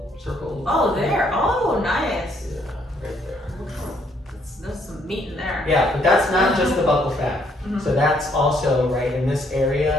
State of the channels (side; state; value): both; normal; correlation 0.69